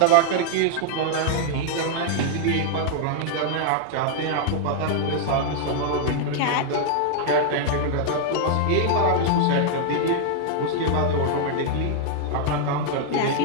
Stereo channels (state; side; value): different; both; correlation -0.01